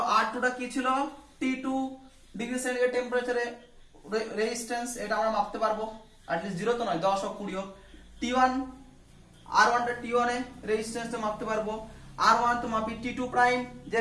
R2 টা কি ছিল? T2 ডিগ্রি সেন্টিগ্রেড টেম্পারেচারে রেজিস্ট্যান্স, এটা আমরা মাপতে পারবো। অ্যাটলিস্ট 0 তো নয়, 10 হোক 20 হোক। T1 R1 টা T1 এ রেজিস্ট্যান্সটা মাপতে পারবো। R1 তো মাপি T2 প্রাইম যে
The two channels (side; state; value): both; identical; correlation 1.00